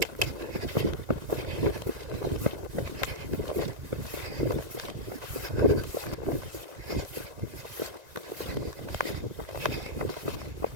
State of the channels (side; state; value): left; late; 1.9 ms